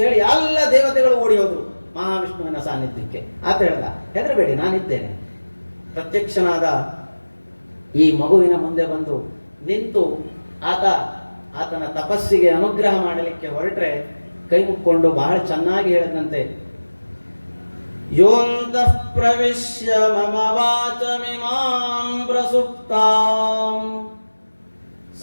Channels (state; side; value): inverted; both; correlation -1.00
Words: ಹೇಳಿ ಎಲ್ಲ ದೇವತೆಗಳು ಓಡಿ ಹೋದ್ರು ಮಹಾವಿಷ್ಣುವಿನ ಸಾನ್ನಿಧ್ಯಕ್ಕೆ. ಆತ ಹೇಳ್ದ, ಹೆದರಬೇಡಿ, ನಾನಿದ್ದೇನೆ. ಪ್ರತ್ಯಕ್ಷನಾದ ಈ ಮಗುವಿನ ಮುಂದೆ ಬಂದು ನಿಂತು ಆತನ ತಪಸ್ಸಿಗೆ ಅನುಗ್ರಹ ಮಾಡಲಿಕ್ಕೆ ಹೊರಟ್ರೆ ಕೈ ಮುಕ್ಕೊಂಡು ಬಹಳ ಚೆನ್ನಾಗಿ ಹೇಳಿದಂತೆ, ಯೋಂತಃ ಪ್ರವಿಶ್ಯ ಮಮ ವಾಚಮಿಮಾಂ ಪ್ರಸುಪ್ತಾಂ